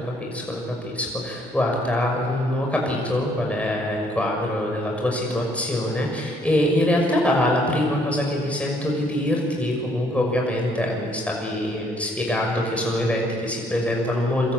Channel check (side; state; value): both; normal; correlation 0.66